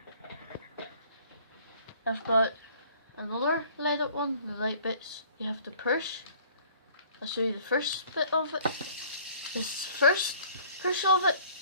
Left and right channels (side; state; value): both; inverted; correlation -0.53